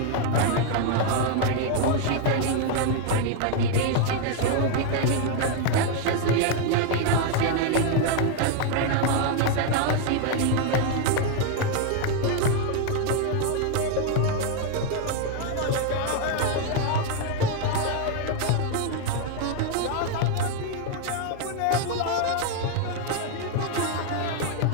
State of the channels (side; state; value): both; different; correlation 0.01